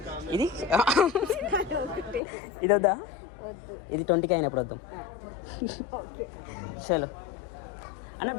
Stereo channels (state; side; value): drops out; right; at 2.2 s